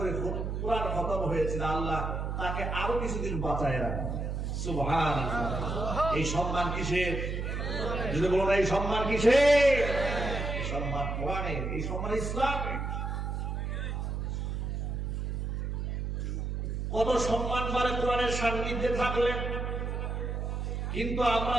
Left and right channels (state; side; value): noise; right; hum, 2 dB below the sound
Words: কোরআন খতম হয়েছিল, আল্লাহ তাকে আরো কিছুদিন বাঁচায় রাখে। সুবহানাল্লাহ। এই সম্মান কিসের? যদি বলো না এই সম্মান কিসের? এই সম্মান কোরআনের, এই সম্মান ইসলামের। কত সম্মান পারে কোরআনের সান্নিধ্যে থাকলে, কিন্তু আমরা